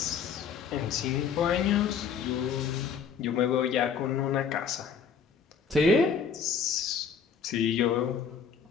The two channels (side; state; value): right; quieter; 6.6 dB